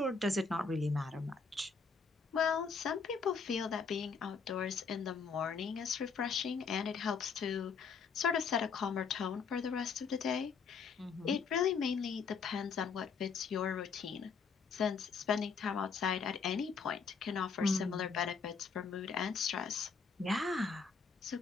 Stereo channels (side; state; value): right; quieter; 5.5 dB